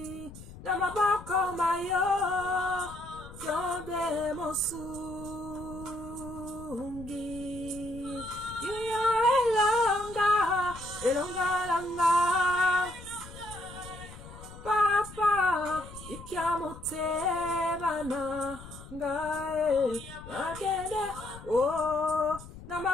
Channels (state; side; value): noise; left; rumble, 15 dB below the sound